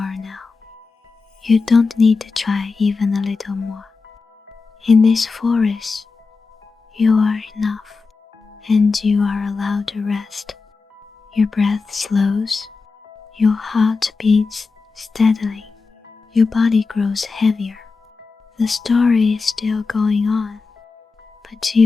now. You don't need to try even a little more. In this forest, you are enough, and you are allowed to rest. Your breath slows, your heart beats steadily, your body grows heavier. The story is still going on, but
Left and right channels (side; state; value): right; quieter; 4.4 dB